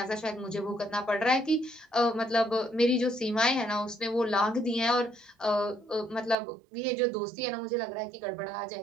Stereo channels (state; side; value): drops out; left; at 6.4 s